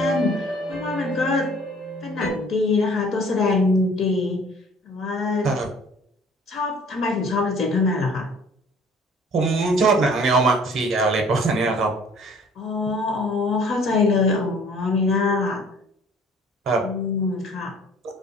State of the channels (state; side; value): normal; both; correlation 0.52